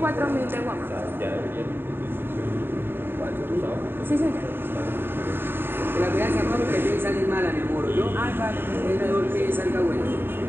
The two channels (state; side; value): late; left; 0.10 ms